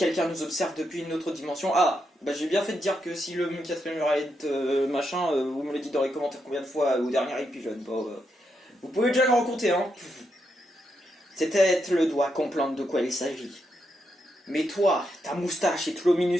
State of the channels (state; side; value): normal; both; correlation 0.82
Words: nous observe depuis une autre dimension... Ah, bah j'ai bien fait de dire que si le quatrième muraille machin, vous me le dites dans les commentaires combien de fois au dernier épisode. Bon, vous pouvez déjà le rencontrer, hein. C'est peut-être le doigt comprendre de quoi il s'agit. Mais toi, ta moustache est trop